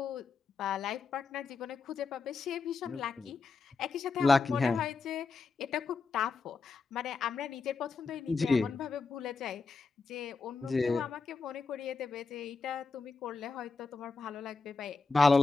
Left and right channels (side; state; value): right; quieter; 4.4 dB